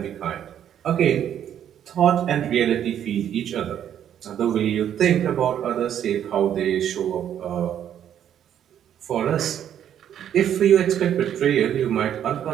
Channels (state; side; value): quieter; left; 9.9 dB